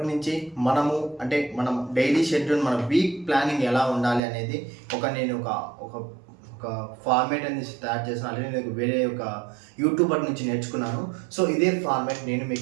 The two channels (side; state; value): left; drops out; at 4.2 s